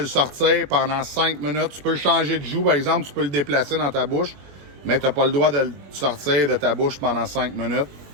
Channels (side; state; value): left; late; 21 ms